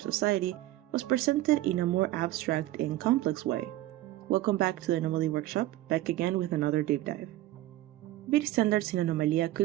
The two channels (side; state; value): left; quieter; 15.6 dB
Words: was presented in a more abstract and complex way? Welcome back to the Anomaly Workshop, back again with another deep dive. Beauty standards in Anomalia